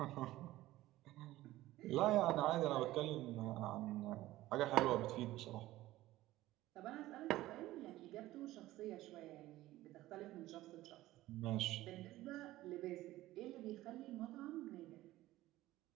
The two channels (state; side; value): quieter; left; 16.3 dB